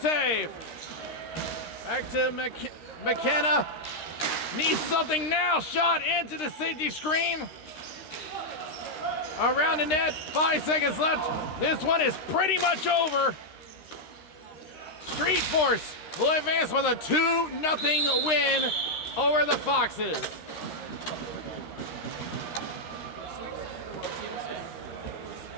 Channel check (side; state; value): right; late; 13 ms